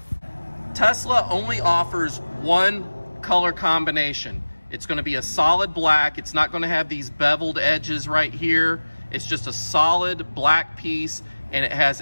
Tesla only offers one color combination. It's going to be a solid black. It's not going to have these beveled edges right here. It's just a solid black piece, and it has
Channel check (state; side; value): inverted; both; correlation -1.00